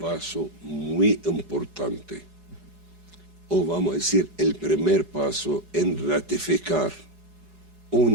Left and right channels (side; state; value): left; late; 4.8 ms